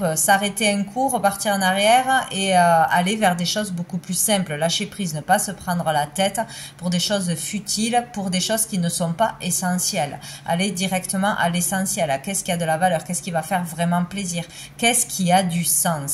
s'arrêter un coup, repartir en arrière et aller vers des choses beaucoup plus simples. Lâcher prise, ne pas se prendre la tête pour des choses futiles, pour des choses qui ne sont pas essentielles. Aller directement à l'essentiel. Qu'est-ce qui a de la valeur? Qu'est-ce qui va faire vraiment plaisir? Qu'est-ce qui a du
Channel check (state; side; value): identical; both; correlation 1.00